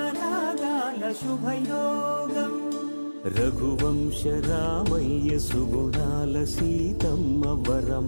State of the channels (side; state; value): both; inverted; correlation -1.00